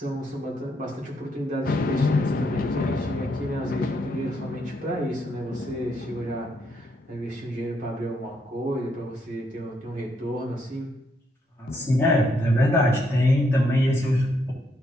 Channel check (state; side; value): normal; both; correlation 0.75